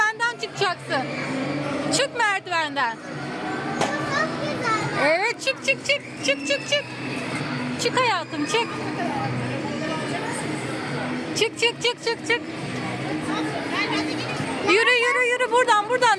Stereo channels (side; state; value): both; identical; correlation 1.00